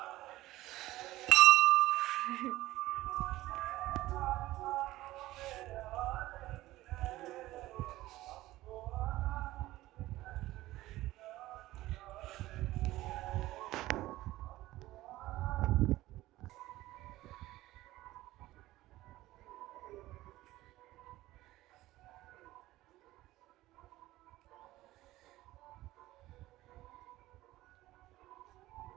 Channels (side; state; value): left; quieter; 16.7 dB